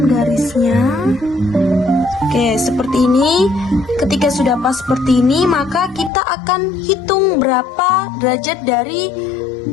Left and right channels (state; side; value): drops out; right; at 6.1 s